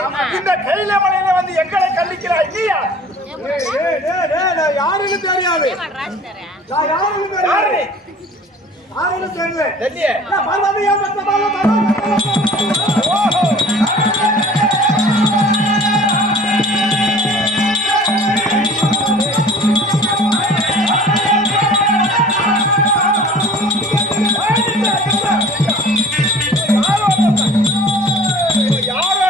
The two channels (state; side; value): normal; both; correlation 0.47